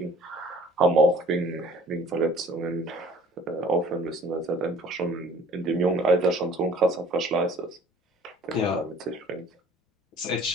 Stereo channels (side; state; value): both; normal; correlation 0.52